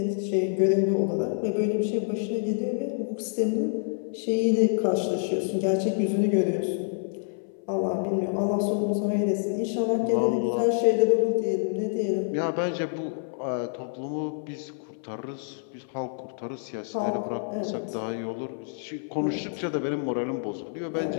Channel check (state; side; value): silent; right; 56 dB below the other